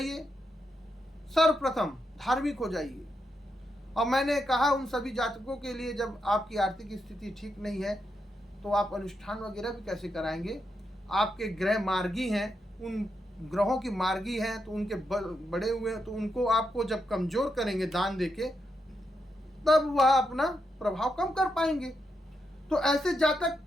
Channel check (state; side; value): normal; both; correlation 0.83